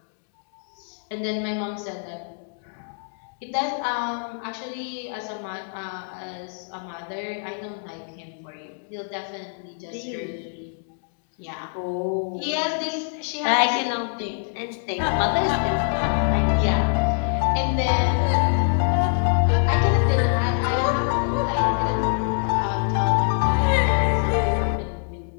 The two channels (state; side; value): silent; right; digital silence